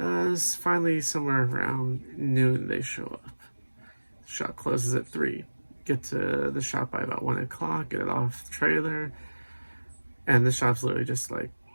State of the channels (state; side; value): inverted; both; correlation -1.00